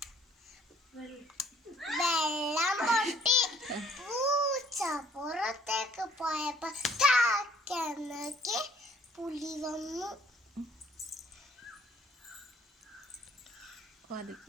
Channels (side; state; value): both; normal; correlation 0.60